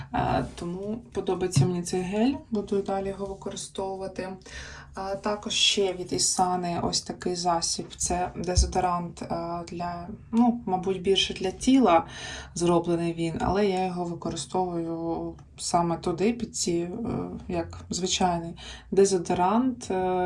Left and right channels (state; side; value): identical; both; correlation 1.00